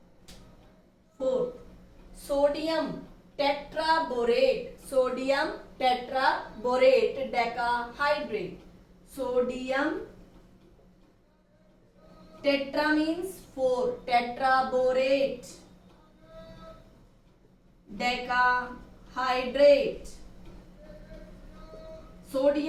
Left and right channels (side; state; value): both; identical; correlation 1.00